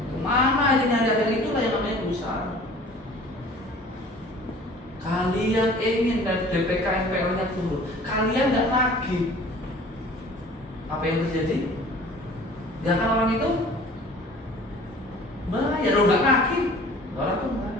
Kemana aja nyari, akhirnya itulah yang namanya berusaha. Kalian ingin dan DPK NPL-nya turun, kalian nggak nagih, apa yang terjadi? Nggak kan orang itu bayar, lo nggak nagih, orang tuh bayar.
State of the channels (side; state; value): both; normal; correlation 0.47